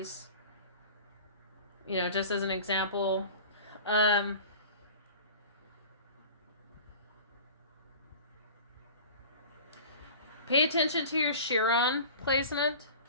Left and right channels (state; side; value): inverted; both; correlation -0.39